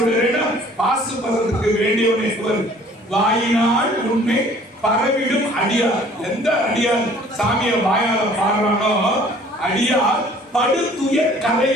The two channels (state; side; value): normal; both; correlation 0.54